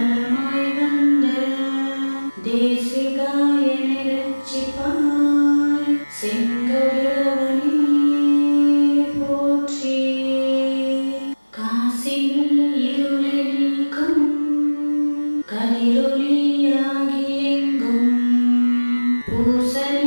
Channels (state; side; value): inverted; both; correlation -1.00